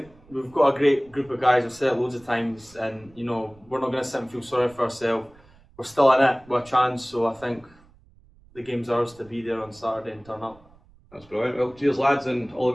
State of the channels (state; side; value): noise; right; rumble, 27 dB below the sound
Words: we've got a great group of guys. I've said it loads of times, and we're not going to sit and feel sorry for ourselves. We're still in it with a chance, so I think the game's ours to be there on Saturday and turn up. That's brilliant. Well, cheers lads, and all